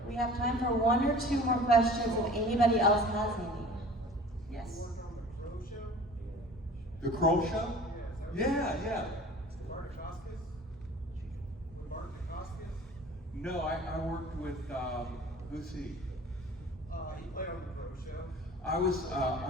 We have time for one or two more questions if anybody else has any. Yes. The Kroll Show? Yeah. No, I worked with who's he? He played on the Pro Show.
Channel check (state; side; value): normal; both; correlation 0.44